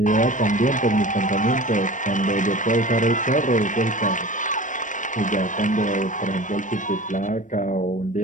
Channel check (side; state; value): right; late; 0.37 ms